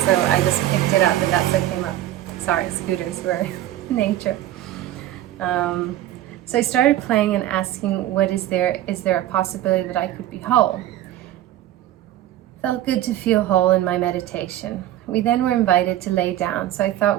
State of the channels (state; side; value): quieter; left; 13.4 dB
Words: So I just picked it up and that's what came up. Sorry, scooters were nature. So I started playing and asking, is there a possibility that I could be whole? Felt good to feel whole in my meditation. We then were invited to lay down, so I thought